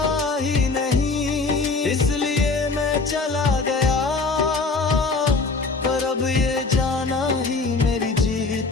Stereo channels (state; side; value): quieter; right; 3.9 dB